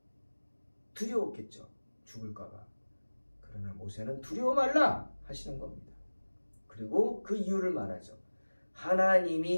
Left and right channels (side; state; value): both; inverted; correlation -1.00